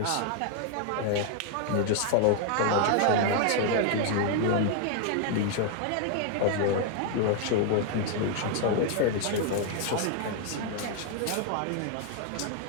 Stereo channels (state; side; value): different; both; correlation 0.00